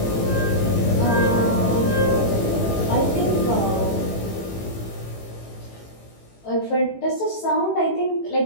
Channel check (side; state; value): right; late; 18 ms